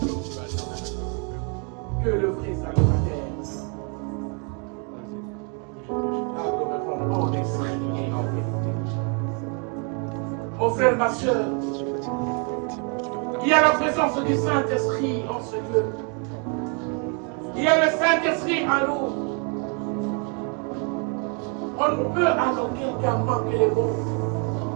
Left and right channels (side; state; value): left; quieter; 37.3 dB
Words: Que le vrai salutateur. Adorons en esprit et en vérité. Mon frère, ma soeur, il y a la présence du Saint-Esprit en ce lieu. Il y a le Saint-Esprit en nous. On ne peut à aucun cas manquer les mots